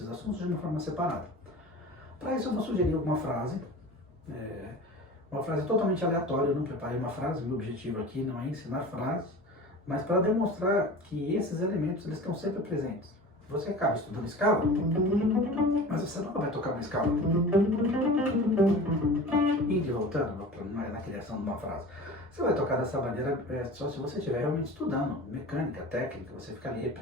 assuntos de uma forma separada. Para isso eu vou sugerir uma frase totalmente aleatória. Eu não preparei uma frase, meu objetivo aqui não é ensinar frases, mas para demonstrar que esses elementos eles estão sempre presentes. Você acaba estudando escala, mas você nunca vai tocar uma escala indo e voltando na criação de uma frase. Você vai tocar dessa maneira só se você estiver realmente estudando mecânica, técnica, você ficar ali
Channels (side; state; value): both; normal; correlation 0.36